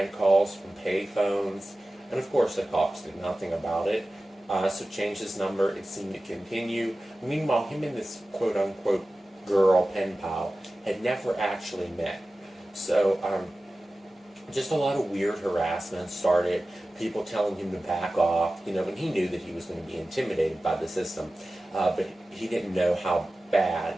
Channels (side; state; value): both; normal; correlation 0.96